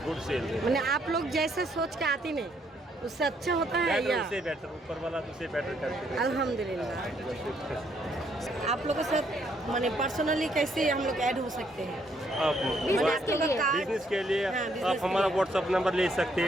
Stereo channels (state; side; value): normal; both; correlation 0.70